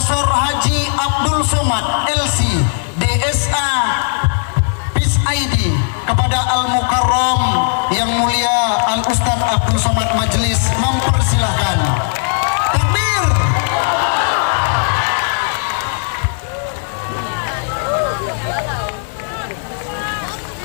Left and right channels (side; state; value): right; silent; 56 dB below the other